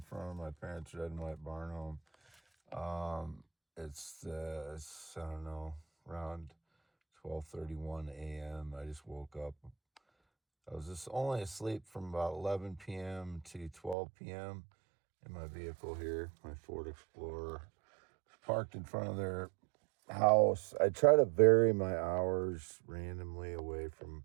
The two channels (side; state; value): left; drops out; at 14.0 s